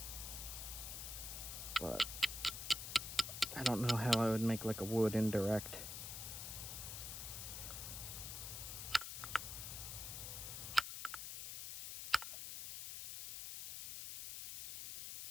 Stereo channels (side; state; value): left; noise; hiss, 6 dB below the sound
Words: but I don't know how I would make like a wood indirect.